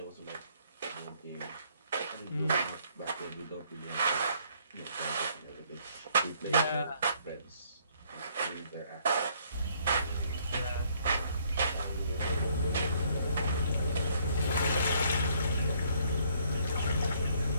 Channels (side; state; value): both; inverted; correlation -0.66